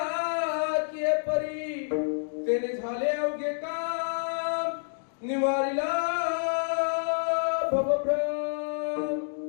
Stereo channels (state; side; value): silent; right; digital silence